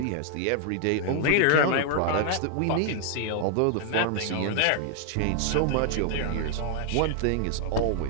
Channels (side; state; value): both; different; correlation 0.00